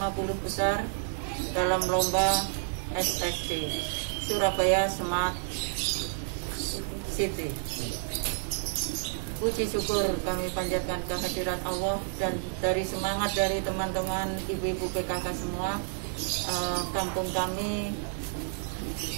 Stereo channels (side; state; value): left; silent; digital silence